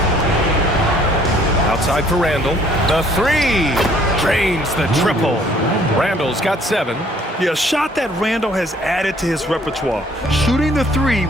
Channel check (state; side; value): normal; both; correlation 0.60